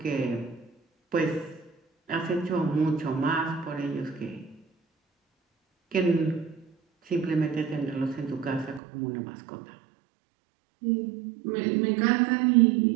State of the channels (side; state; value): left; drops out; at 8.8 s